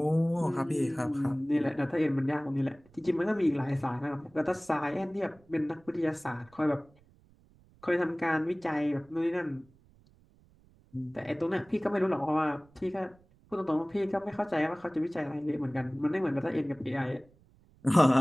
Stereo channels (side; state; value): right; noise; rumble, 29 dB below the sound